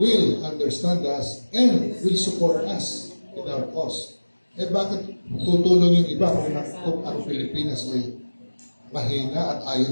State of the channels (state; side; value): inverted; both; correlation -1.00